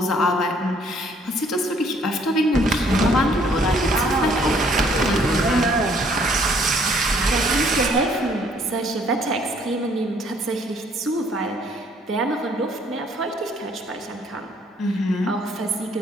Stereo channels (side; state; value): both; normal; correlation 0.62